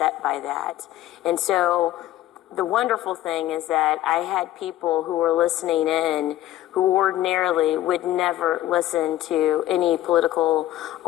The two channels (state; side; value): quieter; right; 14.1 dB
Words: by that. And so the wonderful thing is that I had people who were listening in who ordinarily would never listen to any political